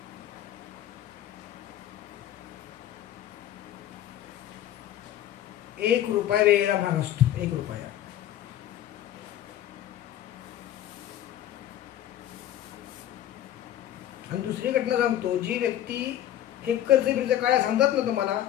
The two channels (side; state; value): right; quieter; 12.0 dB